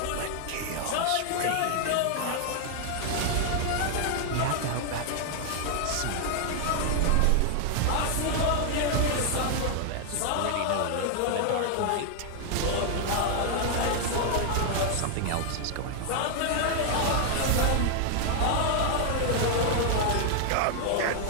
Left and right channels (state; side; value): different; both; correlation 0.00